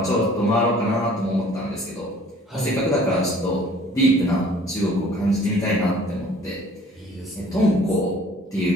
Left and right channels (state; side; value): normal; both; correlation 0.53